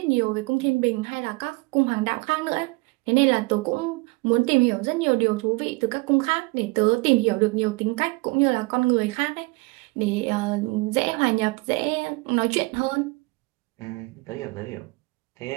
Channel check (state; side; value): quieter; left; 25.5 dB